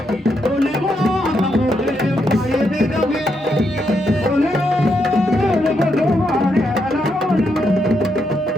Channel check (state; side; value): normal; both; correlation 0.80